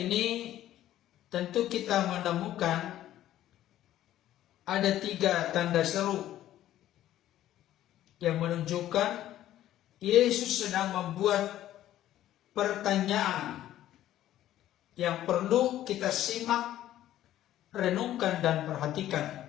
tentu kita menemukan ada 3 tanda seru yang menunjukkan Yesus sedang membuat pertanyaan yang perlu kita simak, renungkan dan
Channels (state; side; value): quieter; right; 13.0 dB